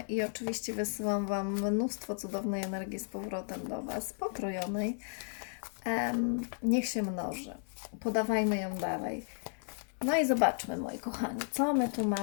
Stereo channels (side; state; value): right; silent; 55 dB below the other